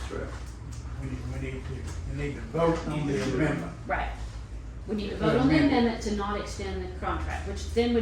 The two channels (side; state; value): both; identical; correlation 1.00